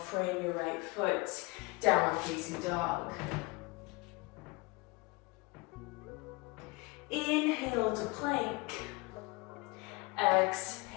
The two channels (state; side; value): quieter; right; 25.7 dB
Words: your right foot, downward facing dog. Inhale to plank.